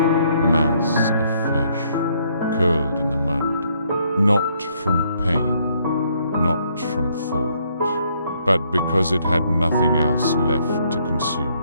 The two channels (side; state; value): both; inverted; correlation -0.69